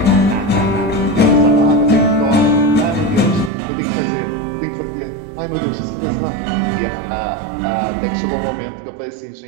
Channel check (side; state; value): left; drops out; at 3.5 s